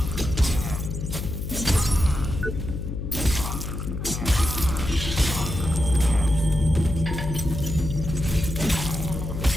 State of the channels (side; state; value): left; noise; hum, 5 dB below the sound